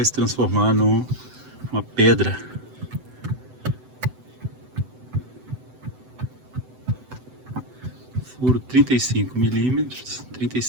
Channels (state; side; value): late; left; 7.9 ms